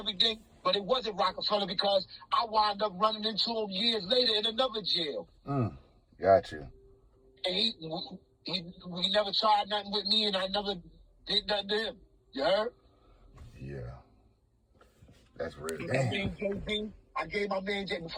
but it wasn't Rockefeller because I wound up running into him years later in another jail. Got you. And he never tried nothing with me, and I never did nothing to him. You heard? Yeah. That's real. I gave my man JB,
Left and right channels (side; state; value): both; identical; correlation 1.00